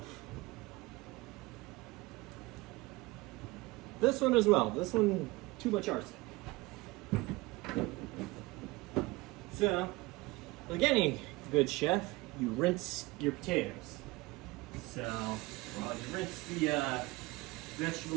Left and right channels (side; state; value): left; quieter; 22.1 dB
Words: This one as well. This one, too much arsenic. So, like any good chef, you rinse your potatoes. So, well, you rinse the